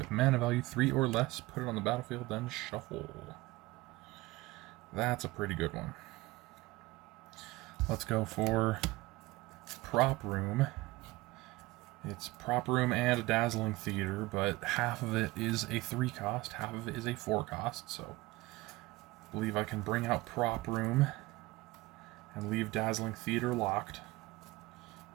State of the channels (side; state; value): left; quieter; 19.8 dB